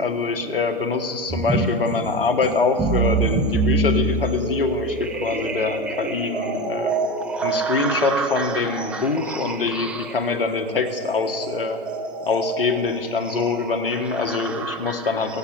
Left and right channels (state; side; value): normal; both; correlation 0.25